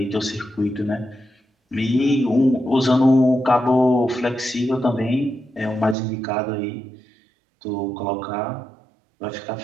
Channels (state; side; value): drops out; left; at 6.0 s